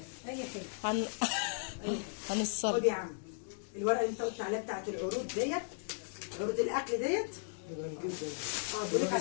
هنتصرف. خد يا عم الورقه اللي انت قلت عليها بتاعت العروض ديت. عروض الاكل ديت. يبقى نجيب ده. بقول لك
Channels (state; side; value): silent; right; digital silence